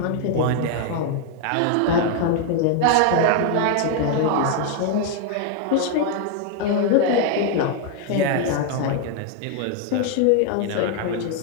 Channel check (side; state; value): both; different; correlation 0.00